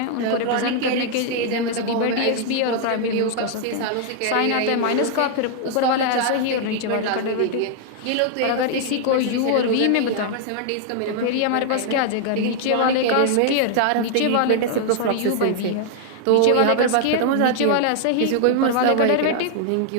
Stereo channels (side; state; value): both; different; correlation -0.01